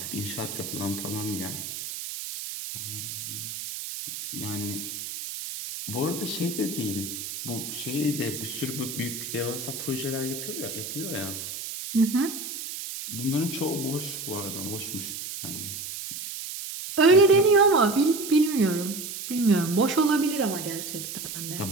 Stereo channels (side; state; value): right; noise; hiss, 7 dB below the sound